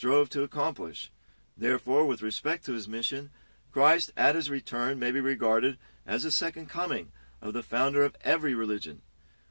to accomplish. Therefore, with respect to his mission, Christ at his return may be regarded as the second coming of the founder of every religion.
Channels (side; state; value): both; inverted; correlation -1.00